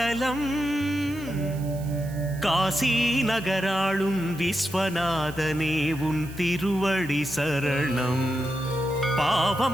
காசி நகராளும் விஸ்வநாதனே உன் திருவடி சரணம்.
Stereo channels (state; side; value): noise; right; hiss, 20 dB below the sound